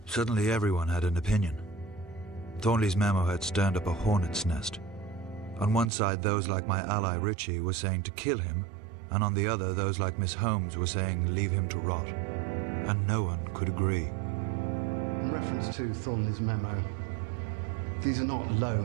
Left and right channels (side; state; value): left; drops out; at 5.9 s